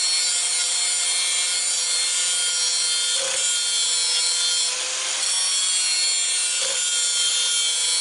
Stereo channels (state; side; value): identical; both; correlation 1.00